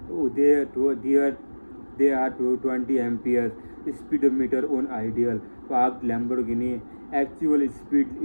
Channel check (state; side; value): inverted; both; correlation -1.00